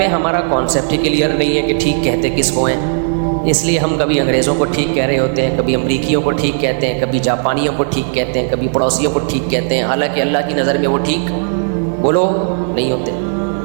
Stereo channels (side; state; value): left; silent; digital silence